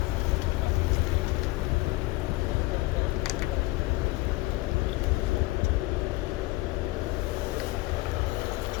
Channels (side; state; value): right; quieter; 20.6 dB